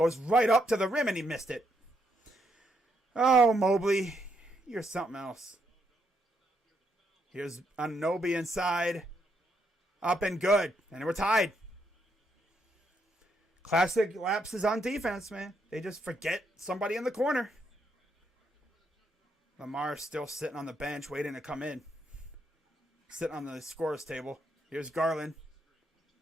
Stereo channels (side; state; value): both; normal; correlation 0.77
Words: right up to the rim and he missed it. Oh, Mobley. You're something else. Here's Anunoby inside. Up and good. And we're tied. Classic lapses on defense, man. They just forget somebody in the corner. Lamar's still sitting on the bench waiting to come in. Sitting on the scorer's table. Here's Garland.